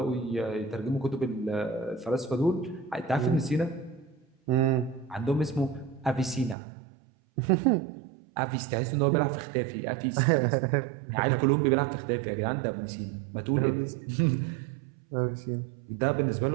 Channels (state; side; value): drops out; left; at 6.6 s